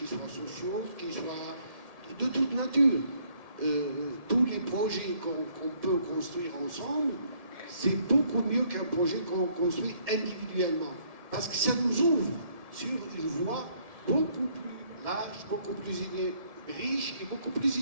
soient sociaux, qui soient de toute nature. Tous les projets qu'on peut construire ensemble, c'est beaucoup mieux qu'un projet qu'on construit individuellement. Parce que ça nous ouvre sur une voie beaucoup plus large, beaucoup plus riche et beaucoup plus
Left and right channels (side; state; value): left; late; 1.7 ms